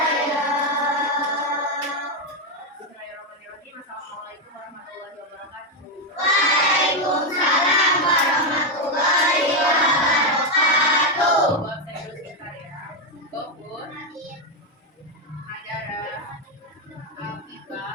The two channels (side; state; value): both; normal; correlation 0.05